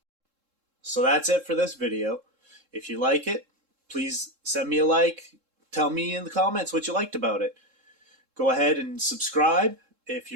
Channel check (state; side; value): late; left; 3.7 ms